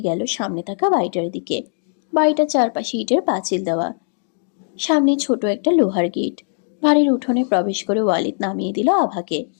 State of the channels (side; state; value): right; silent; digital silence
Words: গেল সামনে থাকা বাড়িটার দিকে। বাড়িটার চারপাশে ইটের পাঁচিল দেওয়া, সামনে ছোট একটা লোহার গেট। বাড়ির উঠোনে প্রবেশ করে ওয়ালিদ নামিয়ে দিল আভাকে।